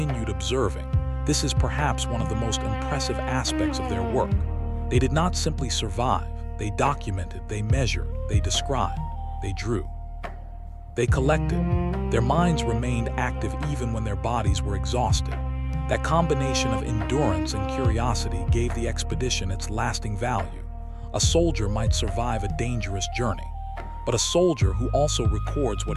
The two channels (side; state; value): both; identical; correlation 1.00